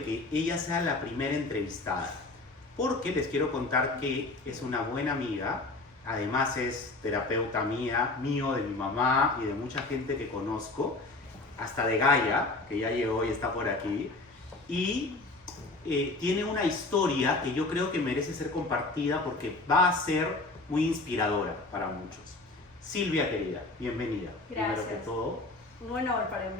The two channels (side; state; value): right; quieter; 3.2 dB